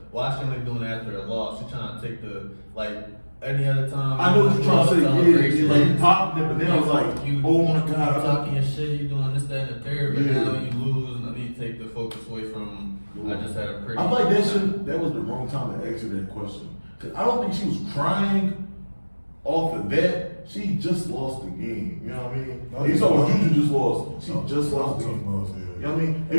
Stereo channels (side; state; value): both; inverted; correlation -1.00